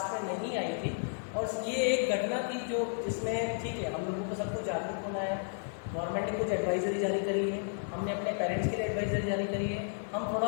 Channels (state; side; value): silent; right; digital silence